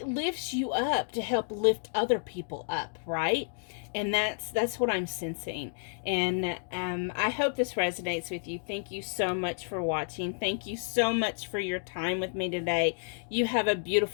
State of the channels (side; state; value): right; silent; digital silence